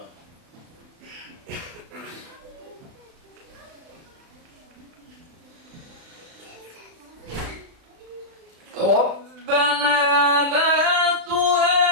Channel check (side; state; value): left; late; 36 ms